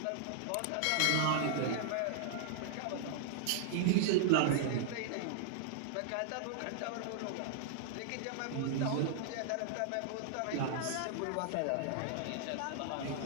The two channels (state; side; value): different; both; correlation -0.01